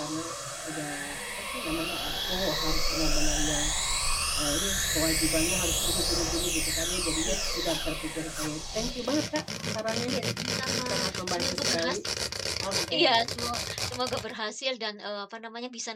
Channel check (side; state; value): both; identical; correlation 1.00